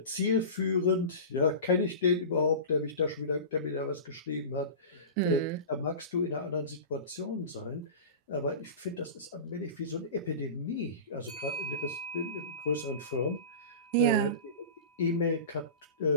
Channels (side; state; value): both; inverted; correlation -0.31